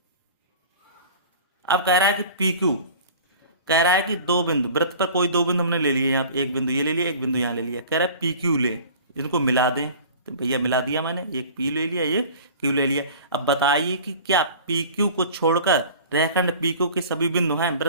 अब कह रहा है कि पी क्यू कह रहा है कि दो बिंदु, वृत्त पर कोई दो बिंदु हमने ले लिए, यहाँ एक बिंदु ये ले लिया, एक बिंदु यहाँ ले लिया, कह रहा है पी क्यू ले, इनको मिला दें। तो भैया मिला दिया मैंने, एक पी ले लिया, ये क्यू ले लिया। अब बताइए कि क्या पी क्यू को छोड़कर रेखाखंड पी क्यू के सभी बिंदु हैं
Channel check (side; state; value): both; inverted; correlation -0.42